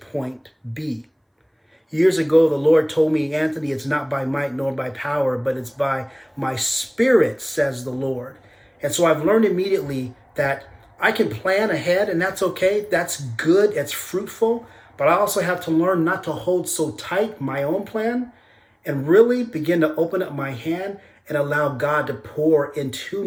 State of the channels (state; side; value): identical; both; correlation 1.00